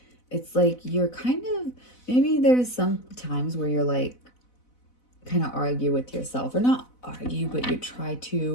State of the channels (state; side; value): late; right; 4.0 ms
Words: It's like you're kind of, maybe there's some times where you're like, kind of argue with yourself, or not argue, but you try